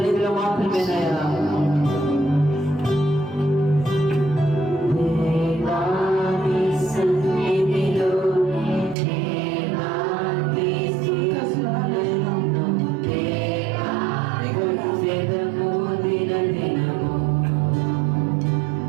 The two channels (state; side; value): drops out; left; at 9.0 s